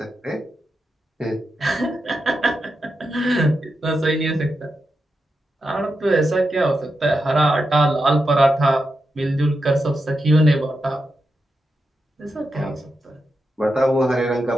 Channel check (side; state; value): both; normal; correlation 0.87